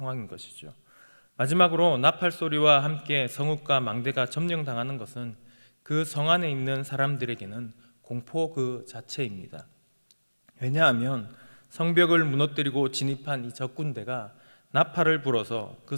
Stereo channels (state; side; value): inverted; both; correlation -1.00